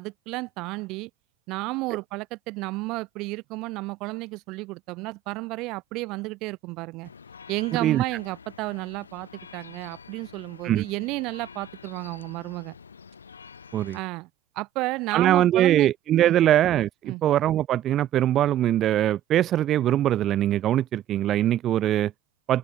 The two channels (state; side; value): quieter; left; 12.5 dB